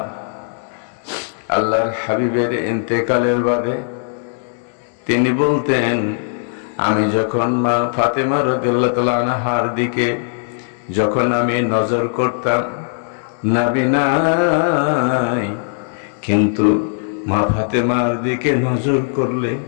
আল্লাহর হাবিবের ইন্তেকালের বাদে তিনি বলতেন, আমি যখন মা ফাতেমা রাদিয়াল্লাহু তাআলা আনহার দিকে যখন আমি নজর করতাম, নবী নাই, কিন্তু মা ফাতেমার দিকে নজর করলে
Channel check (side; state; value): right; silent; digital silence